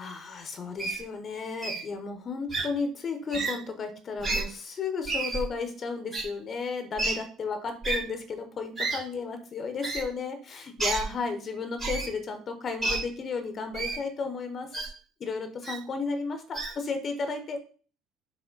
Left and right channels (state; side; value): normal; both; correlation 0.68